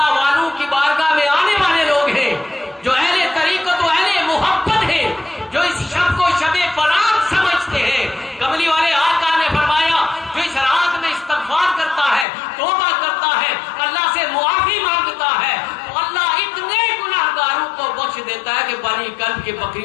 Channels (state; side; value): drops out; right; at 12.2 s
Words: والوں کی بارگاہ میں آنے والے لوگ ہیں جو اہل طریقت و اہل محبت ہیں جو اس شب کو شب برات سمجھتے ہیں. کملی والے آقا نے فرمایا جو اس رات میں استغفار کرتا ہے توبہ کرتا ہے اللہ سے معافی مانگتا ہے تو اللہ اتنے گناہگاروں کو بخش دیتا ہے کہ بنی کلب کے